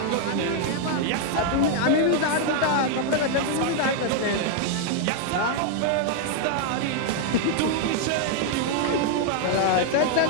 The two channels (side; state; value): both; different; correlation 0.00